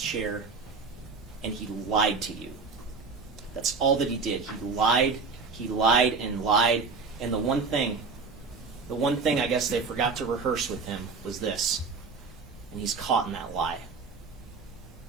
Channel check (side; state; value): left; quieter; 4.7 dB